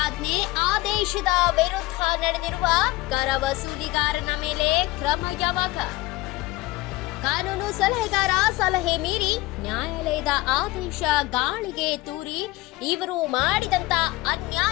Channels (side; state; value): right; quieter; 19.7 dB